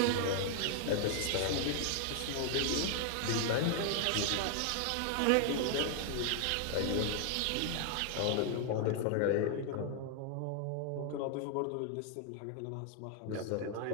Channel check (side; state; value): both; different; correlation 0.00